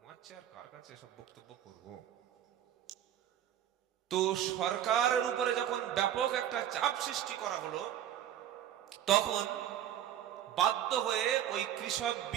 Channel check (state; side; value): quieter; left; 10.8 dB